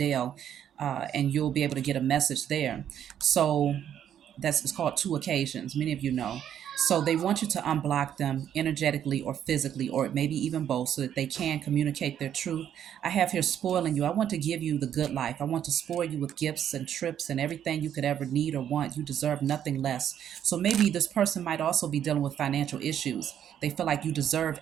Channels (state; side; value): quieter; left; 9.8 dB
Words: and you'll be able to get a message there. So, that's it's called two occasions. Many of you know. So they want you to unblock them energetically or physically, or maybe even both, so that they can communicate their truth. I have here spoiling you. I want to give you the good life. I want to spoil you with gifts and trips and everything you could ever need or want. You deserve nothing less. So maybe this person might also be dealing with financial issues. They feel like you deserve